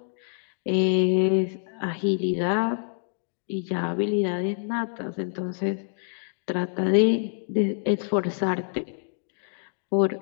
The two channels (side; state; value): right; silent; digital silence